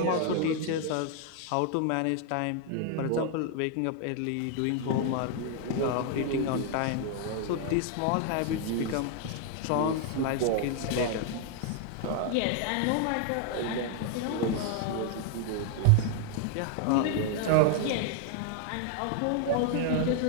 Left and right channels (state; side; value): different; both; correlation 0.00